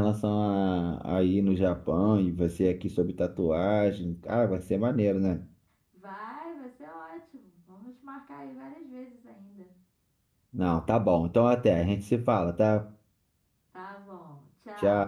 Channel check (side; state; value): both; identical; correlation 1.00